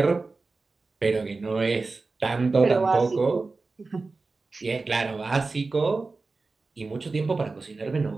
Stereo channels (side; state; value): left; quieter; 3.8 dB